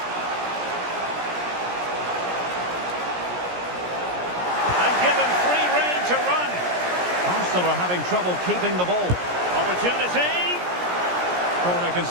Arsenal are having trouble keeping the ball. Opportunity. Corner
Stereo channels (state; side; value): late; left; 17 ms